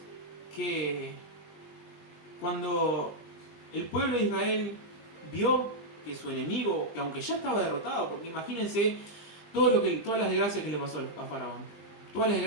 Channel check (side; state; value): right; late; 19 ms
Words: que cuando el pueblo de Israel vio que su enemigo, que aunque ya estaba derrotado, porque imagínense todas las desgracias que le pasó a Faraón, todas las